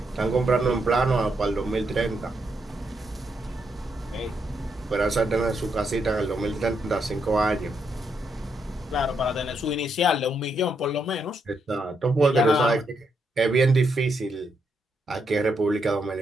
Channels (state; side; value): normal; both; correlation 0.79